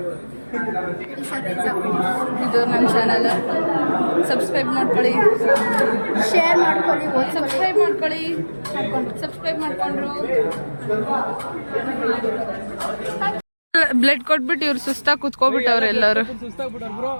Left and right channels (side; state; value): both; inverted; correlation -1.00